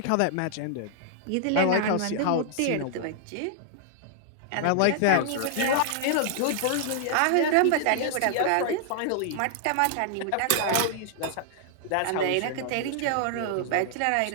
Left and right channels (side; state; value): both; different; correlation -0.01